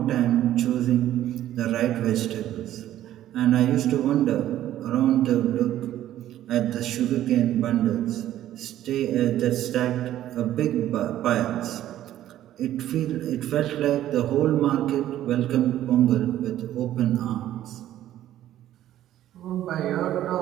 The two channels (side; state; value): left; quieter; 12.7 dB